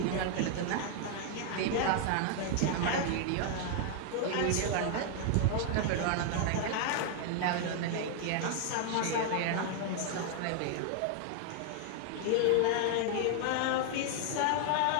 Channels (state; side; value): different; both; correlation 0.00